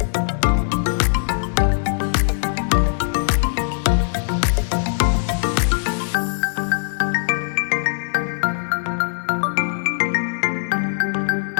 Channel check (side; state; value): right; silent; digital silence